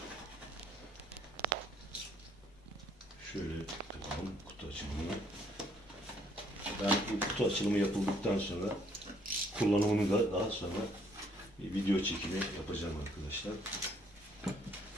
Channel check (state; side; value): normal; both; correlation 0.65